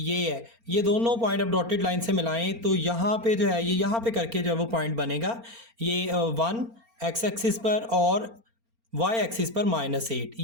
है। ये दोनों पॉइंट अब डॉटेड लाइन से मिलाएं तो यहाँ पे जो है ये यहाँ पे करके जो है वो पॉइंट बनेगा। ये 1 x एक्सिस पर और y एक्सिस पर -8,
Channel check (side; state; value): left; late; 4.3 ms